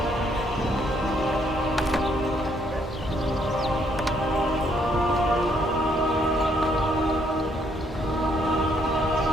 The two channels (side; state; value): both; normal; correlation 0.70